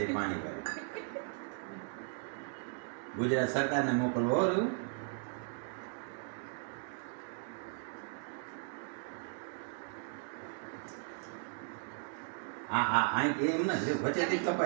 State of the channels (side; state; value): left; silent; 53 dB below the other